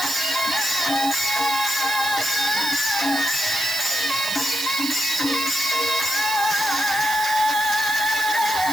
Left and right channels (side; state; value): right; noise; hiss, 7 dB below the sound